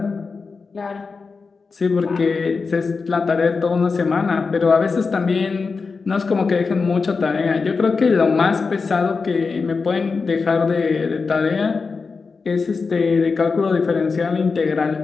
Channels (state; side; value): quieter; right; 4.7 dB